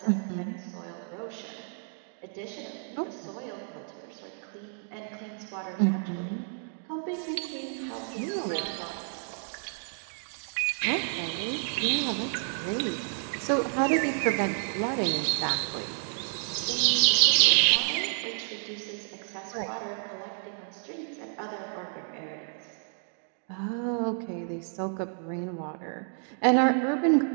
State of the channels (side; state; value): left; silent; 58 dB below the other